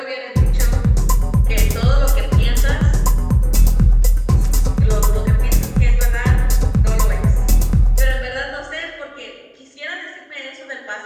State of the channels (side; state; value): both; identical; correlation 1.00